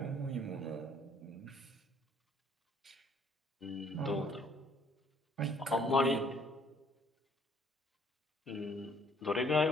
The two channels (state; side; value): normal; both; correlation 0.61